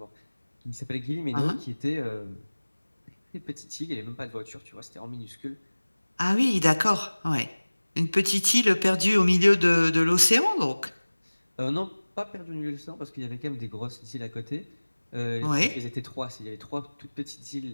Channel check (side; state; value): both; inverted; correlation -1.00